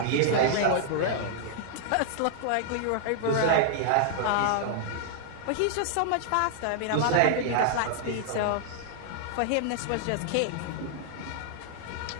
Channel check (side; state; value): both; different; correlation -0.01